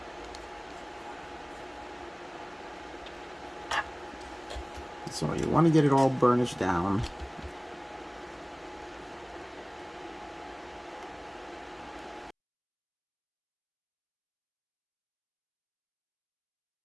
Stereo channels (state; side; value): identical; both; correlation 1.00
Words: So you want to get it all burnished down.